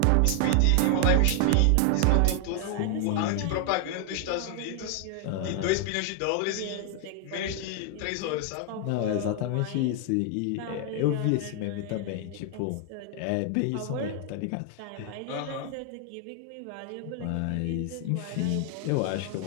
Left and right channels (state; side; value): different; both; correlation 0.00